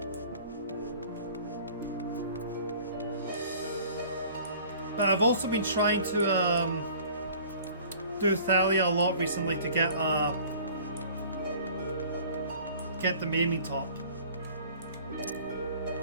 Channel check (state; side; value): inverted; both; correlation -0.49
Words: But I've also been trying to do Thalia a lot recently to get the maiming top.